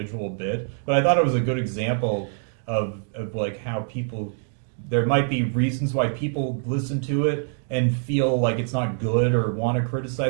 bit, but I thought it was a good example of like how people. There might be reasons why people listen to it and feel like it's not good or want to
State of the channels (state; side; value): silent; left; 62 dB below the other